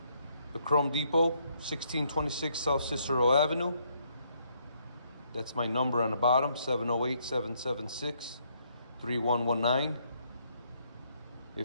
The Chrome Depot, 1626 South Cicero Avenue. That's my number on the bottom, 708-776-3119.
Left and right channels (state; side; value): inverted; both; correlation -0.71